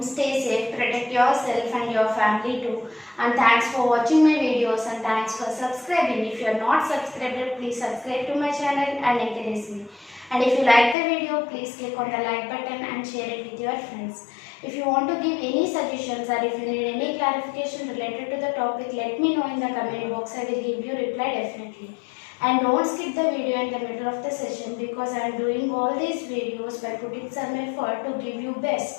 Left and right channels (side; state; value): right; drops out; at 11.0 s